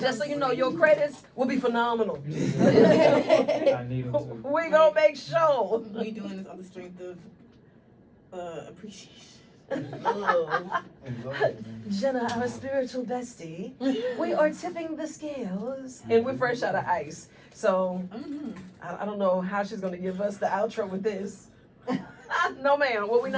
just so you know, your credits will be phenomenal. I need them too. We gonna make sure. We doing this on the strength of appreciation. Jenna, our spiritual bestie, we are tipping the scales, and we're fresh out of ice. So I don't know how she's gonna give us the outro with this. No, ma'am. What we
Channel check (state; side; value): identical; both; correlation 1.00